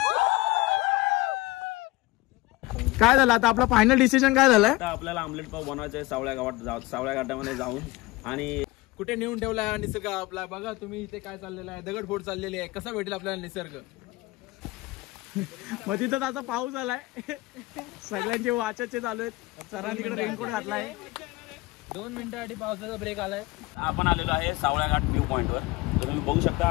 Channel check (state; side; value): quieter; right; 19.9 dB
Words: काय झालं आता, आपला फायनल डिसिजन काय झालंय? आता आपल्याला आमलेट पाव बनवायचं आहे सावळ्या घाटामध्ये जाऊन। आणि कुठे नेऊन ठेवला निसर्ग आपला, बघा तुम्ही इथे काय चाललेलं आहे, दगडफोड चाललेली आहे, कसा भेटेल आपल्याला निसर्ग? मग तिथं त्याचा पाऊस आलाय, सगळ्यांचे वाचाचे चालू आहेत, सरांनी तिकडे रेनकोट घातलाय, 2 मिनिटांसाठी पावसाचा ब्रेक आलाय। आपण आलेलो आहे सावळ्या घाट व्ह्यू पॉइंटवर, तर तुम्ही बघू